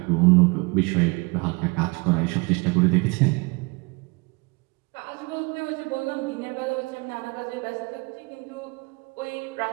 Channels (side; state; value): left; quieter; 28.2 dB